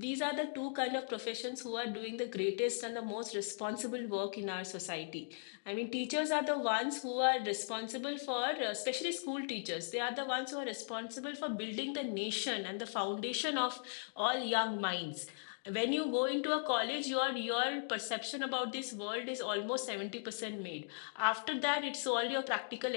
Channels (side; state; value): right; silent; digital silence